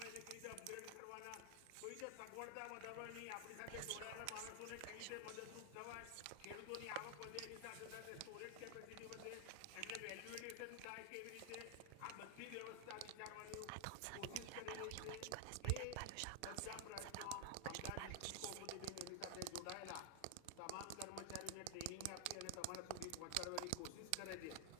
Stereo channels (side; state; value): both; different; correlation 0.00